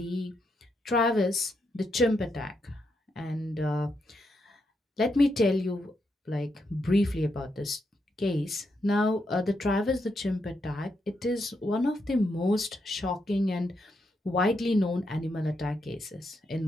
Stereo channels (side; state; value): both; normal; correlation 0.81